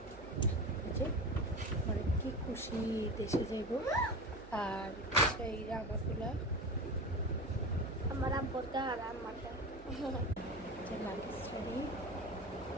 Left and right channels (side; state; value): right; noise; hum, 17 dB below the sound